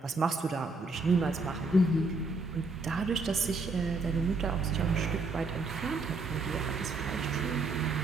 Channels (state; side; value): quieter; left; 3.4 dB